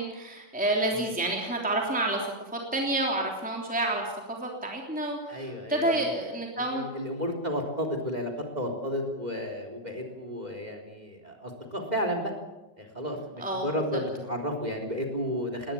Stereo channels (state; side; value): normal; both; correlation -0.04